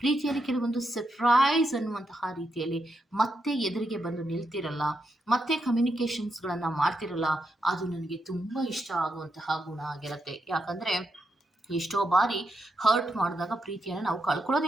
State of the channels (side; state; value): both; normal; correlation 0.83